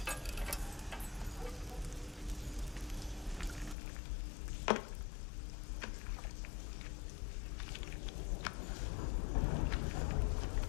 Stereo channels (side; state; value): right; drops out; at 3.8 s